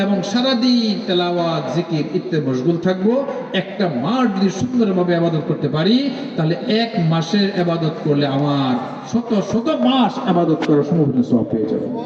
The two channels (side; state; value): both; identical; correlation 1.00